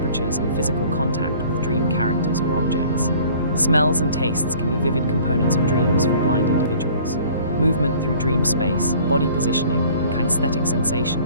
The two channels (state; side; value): inverted; both; correlation -0.51